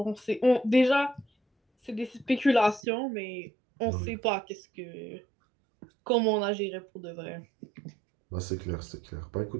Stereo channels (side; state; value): left; drops out; at 2.8 s